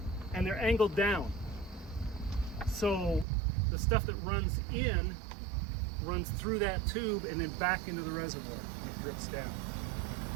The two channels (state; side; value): drops out; left; at 3.2 s